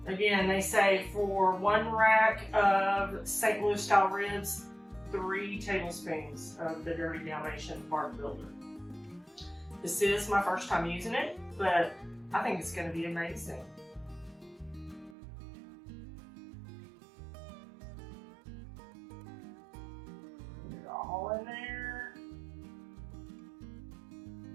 Again, they say for 1 rack of St. Louis style ribs, 3 tablespoons of the Dirty Dalmatian bark builder. This is my first time using it, but I think it's going to be amazing. Put it all in there.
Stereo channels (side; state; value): left; drops out; at 15.2 s